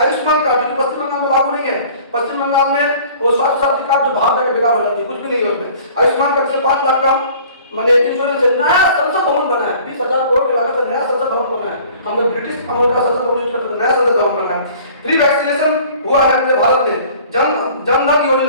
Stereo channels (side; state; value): both; inverted; correlation -0.49